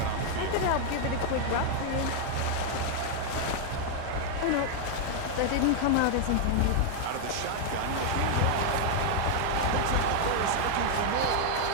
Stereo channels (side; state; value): both; different; correlation 0.00